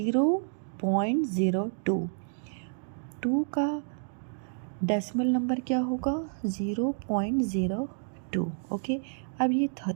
2 का डेसिमल नंबर क्या होगा 0.02। ओके, अब ये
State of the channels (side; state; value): left; silent; digital silence